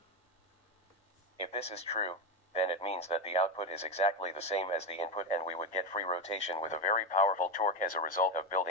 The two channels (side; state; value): both; normal; correlation 0.14